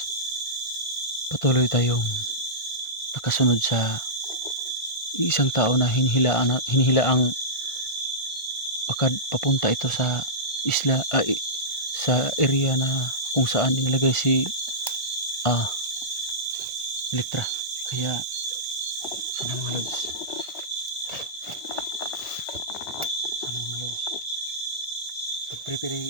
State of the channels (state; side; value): late; right; 1.5 ms